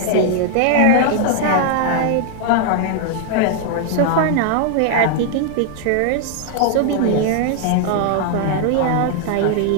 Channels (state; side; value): different; both; correlation 0.00